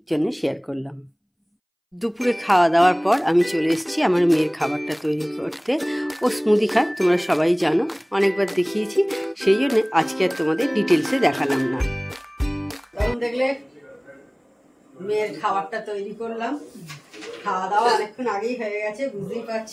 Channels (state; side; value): identical; both; correlation 1.00